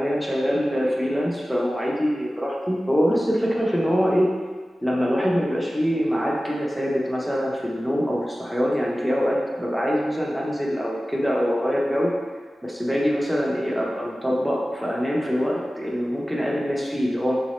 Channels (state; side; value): normal; both; correlation 0.96